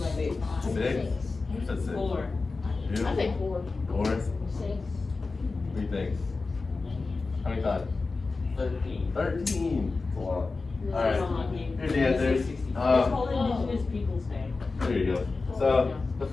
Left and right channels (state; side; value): quieter; right; 3.9 dB